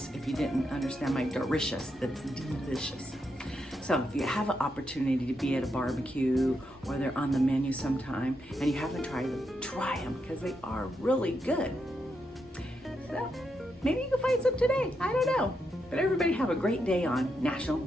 If you didn't understand my delicious, that's delicious. So if you have an opportunity to be at a barbecue or they're on the menu sometime and you haven't tried them, try them because they are really good. So maybe you can find some today. I don't know. But everybody have a great day on National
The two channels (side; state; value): both; normal; correlation 0.83